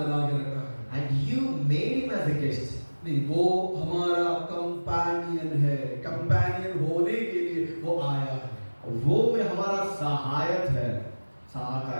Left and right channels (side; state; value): both; inverted; correlation -1.00